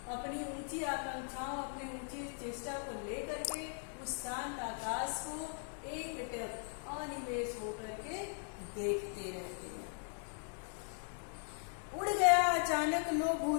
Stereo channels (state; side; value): silent; right; 52 dB below the other